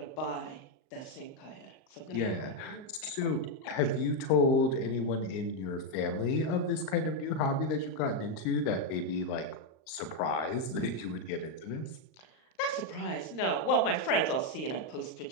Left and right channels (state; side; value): late; right; 38 ms